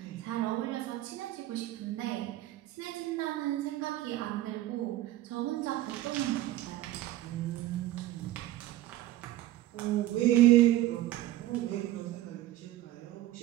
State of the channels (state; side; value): quieter; left; 15.0 dB